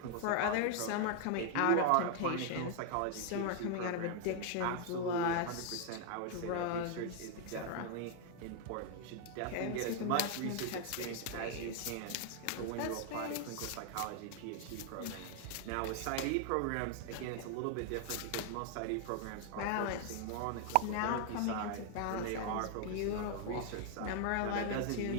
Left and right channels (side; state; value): both; different; correlation 0.00